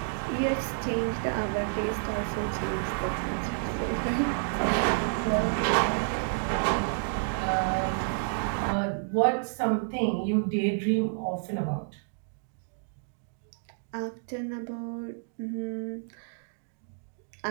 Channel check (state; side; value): silent; left; digital silence